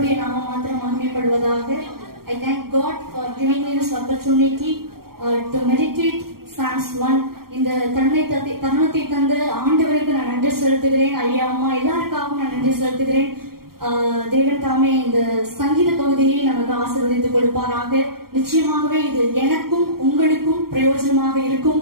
நாமம் மாத்திரம் மகிமைப்படுவதாக. I thank God for giving me this opportunity to meditate Psalms 1. இந்த தருணத்தை தந்து ஆண்டவருக்கு நான் நன்றி செலுத்துகிறேன். ஐயா அம்மா எல்லாருக்காகவும் நான் நன்றி செலுத்துகிறேன். தேவன் தாமே இந்த சங்கீத பகுதியை நமக்கு ஆசீர்வதித்துக் கொடுப்பாராக. நிச்சயமாகவே இது எனக்கும் உங்களுக்கும் பிரயோஜனமாக இருக்கும்.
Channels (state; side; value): late; left; 0.93 ms